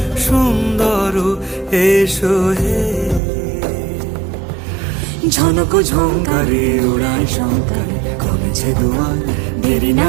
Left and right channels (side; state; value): left; drops out; at 3.2 s